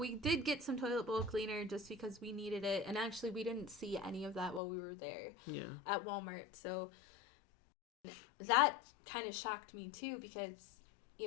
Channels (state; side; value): drops out; right; at 4.6 s